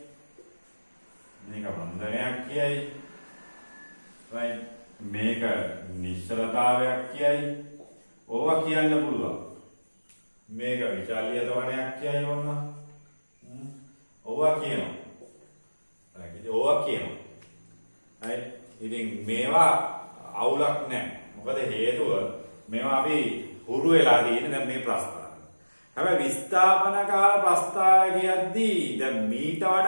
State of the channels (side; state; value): both; inverted; correlation -1.00